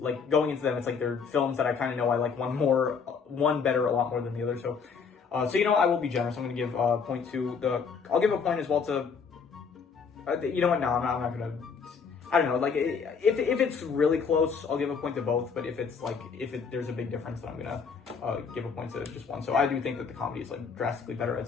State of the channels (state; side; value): quieter; right; 5.8 dB